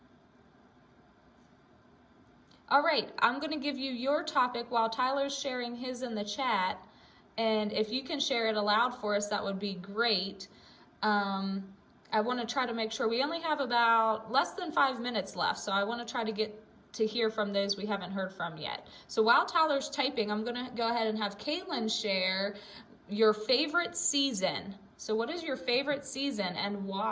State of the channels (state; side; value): identical; both; correlation 1.00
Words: All right, I'm going to give you your topic while Tyler's sharing his in the chat. And if you can share it aloud for us, that would be great. I want to try to make sure we only have about less than 5 minutes left. So I want to try to get to hear from those we haven't heard from yet. So while Tyler's typing, I'm going to go ahead and have Caitlin share your favorite season. So what is your favorite season and